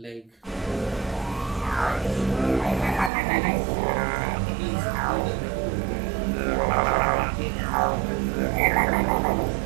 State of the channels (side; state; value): left; drops out; at 3.1 s